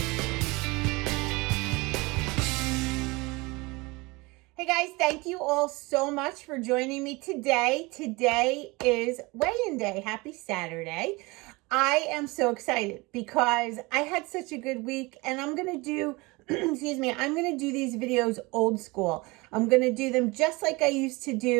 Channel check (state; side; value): quieter; left; 24.5 dB